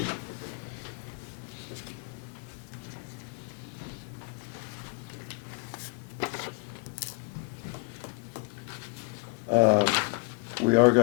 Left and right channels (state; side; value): quieter; right; 27.9 dB